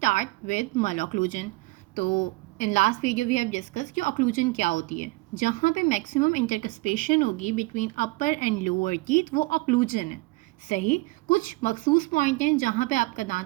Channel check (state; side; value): quieter; left; 22.9 dB